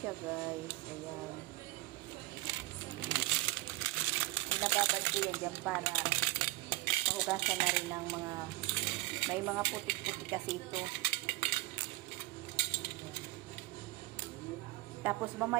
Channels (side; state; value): left; quieter; 19.9 dB